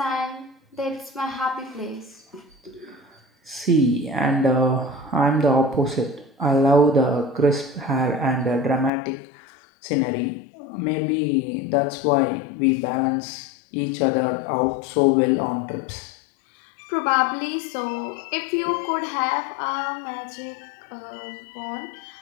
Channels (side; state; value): right; drops out; at 8.9 s